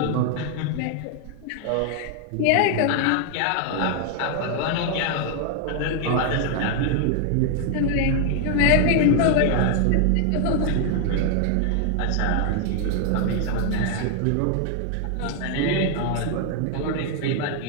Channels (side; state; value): both; different; correlation 0.00